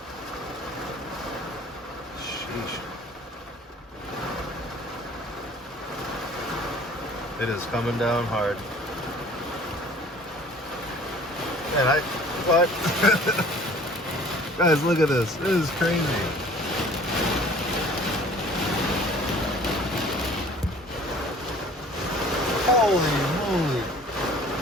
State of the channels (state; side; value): normal; both; correlation 0.50